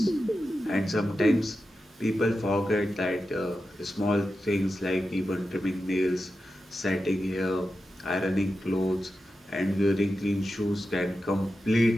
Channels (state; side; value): normal; both; correlation 0.91